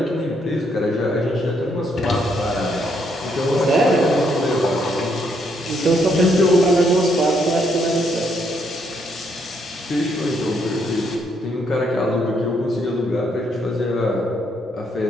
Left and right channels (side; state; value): both; normal; correlation 0.73